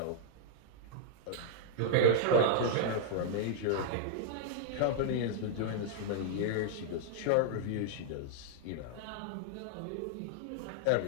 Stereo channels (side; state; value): both; different; correlation -0.01